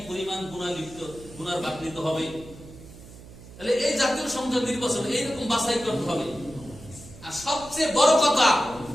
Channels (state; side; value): noise; right; hum, 18 dB below the sound